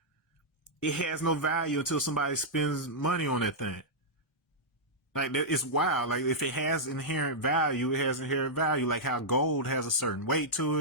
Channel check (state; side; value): normal; both; correlation -0.09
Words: it has no value until somebody spends money on that thing. Like, it's wild. Like, if it has inherent value, it has inherent value. Like how gold has a certain weight to